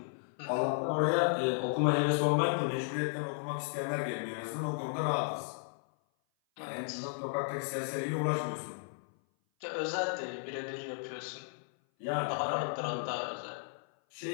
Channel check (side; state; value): right; silent; 55 dB below the other